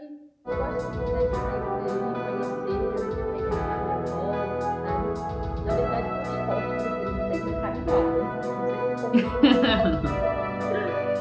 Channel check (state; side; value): identical; both; correlation 1.00